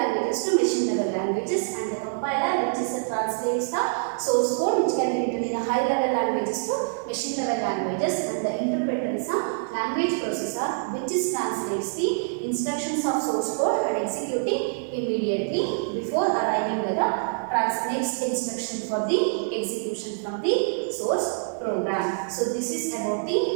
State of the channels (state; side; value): silent; left; digital silence